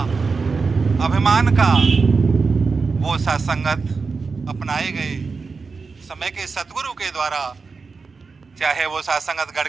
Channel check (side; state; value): left; quieter; 4.6 dB